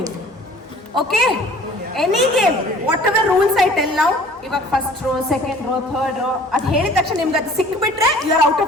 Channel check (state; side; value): normal; both; correlation 0.50